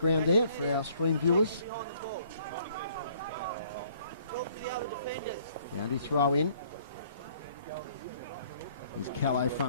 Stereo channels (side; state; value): both; inverted; correlation -0.60